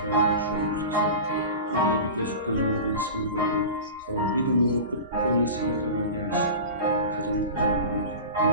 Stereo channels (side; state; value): both; inverted; correlation -0.32